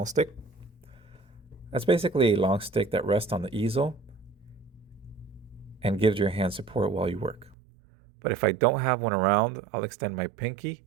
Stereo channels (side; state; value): left; drops out; at 7.6 s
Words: stick. That's basically a long stick that rests on the easel and gives your hand support while you work. But if I don't have one around, I'll extend my pinky